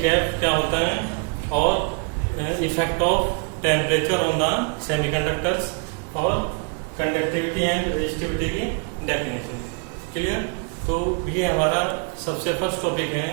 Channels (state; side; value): quieter; left; 38.5 dB